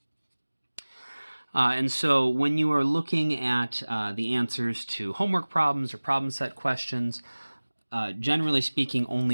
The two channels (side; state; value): both; inverted; correlation -1.00